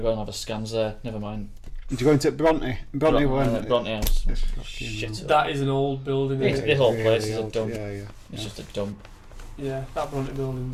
and have a scans there. Never mind. did you go into Bronte? Bronte went. Bronte House. It's fucking Shit. That is an old building. It's- Isn't the it? whole really place is a old. dump. Yeah. It's just a dump. Yeah, that Bronte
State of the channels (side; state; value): both; identical; correlation 1.00